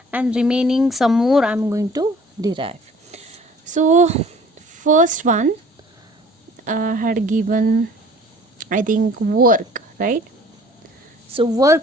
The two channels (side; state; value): both; normal; correlation 0.51